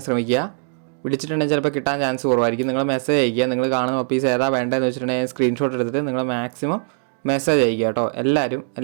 ശ്രമിക്കുക. വിളിച്ചിട്ടുണ്ടെങ്കിൽ ചിലപ്പോൾ കിട്ടാൻ ചാൻസ് കുറവായിരിക്കും. നിങ്ങൾ മെസ്സേജ് അയക്കുക. നിങ്ങൾ കാണുന്ന പപ്പീസ് ഏതാ വേണ്ടതെന്ന് വെച്ചിട്ടുണ്ടെങ്കിൽ സ്ക്രീൻഷോട്ട് എടുത്തിട്ട് നിങ്ങൾ മാക്സിമം മെസ്സേജ് അയക്കുക കേട്ടോ.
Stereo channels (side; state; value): left; silent; 65 dB below the other